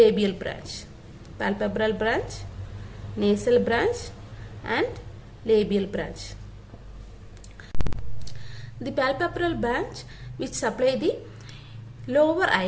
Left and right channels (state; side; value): identical; both; correlation 1.00